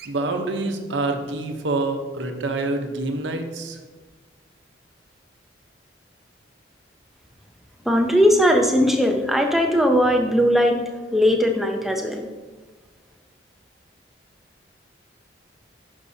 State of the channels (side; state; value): both; normal; correlation 0.70